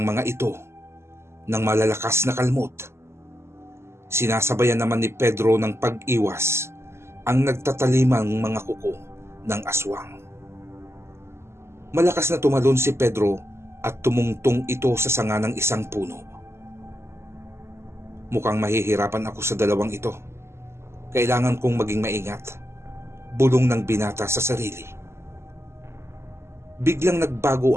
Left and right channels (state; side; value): late; left; 0.13 ms